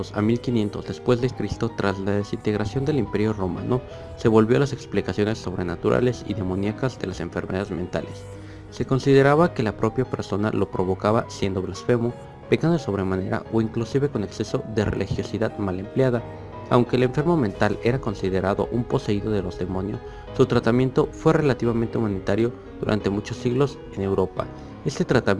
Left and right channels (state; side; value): identical; both; correlation 1.00